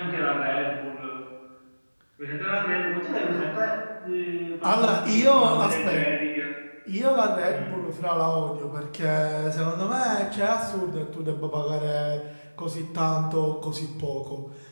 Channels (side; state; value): both; inverted; correlation -1.00